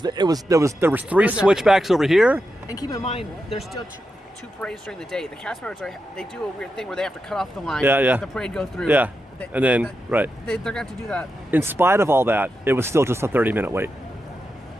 3 switchbacks over here. And keep in mind, there's still two parades during the day. The cast members they do a weird thing where they have to cut off the line. Yeah. Let the parade go through. Yeah, and then they're going to have to do that. In spite of all that, it was still just a 30-minute wait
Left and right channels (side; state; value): both; normal; correlation 0.88